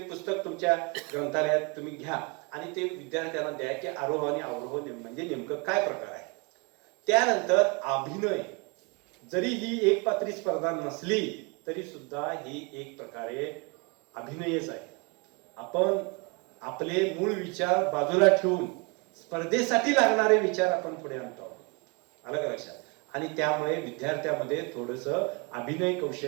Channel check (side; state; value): left; quieter; 30.4 dB